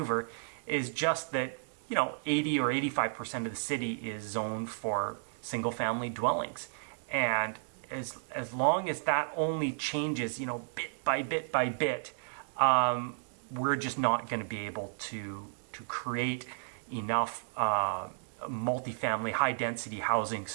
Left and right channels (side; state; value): left; silent; 56 dB below the other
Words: is just that 80 or 85% of the city is zoned for single-family dwellings, and as long as that only changes bit by bit by bit, we're just not going to be able to create enough multifamily high-density housing